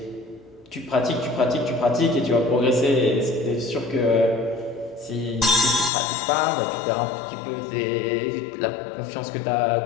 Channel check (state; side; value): drops out; right; at 5.9 s